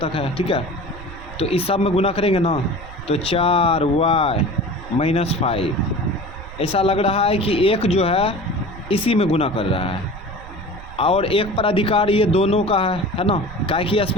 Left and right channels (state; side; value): noise; right; rumble, 15 dB below the sound